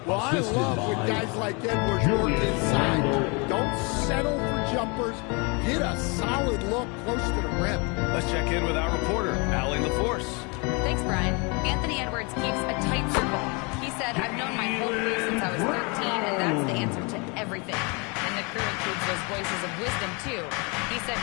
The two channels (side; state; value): right; quieter; 31.0 dB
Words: Well, I love when guys like Edwards work inside. Don't settle for jumpers. Get a solid look close to the rim. Let's check in with our reporter, Allie LaForce. Thanks, Brian. Anthony Edwards keeps a tight circle. He said, I've known my whole crew since I was 13, and that's the answer to everything. And the crew includes those voices of wisdom, too. He said,